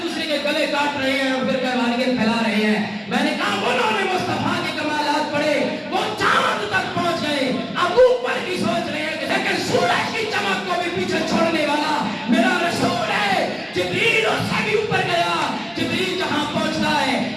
دوسرے کے گلے کاٹ رہے ہیں اور فرقہ واریت پھیلا رہے ہیں۔ میں نے کہا انہوں نے مصطفیٰ کے کمالات پڑھے، وہ چاند تک پہنچ گئے، اب اوپر کی سوچ رہے ہیں کہ لیکن سورج کی چمک کو بھی پیچھے چھوڑنے والا میرا رسول ہے۔ جبریل اس سے بھی اوپر گیا، جبریل جہاں پہنچتا ہے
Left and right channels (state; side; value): identical; both; correlation 1.00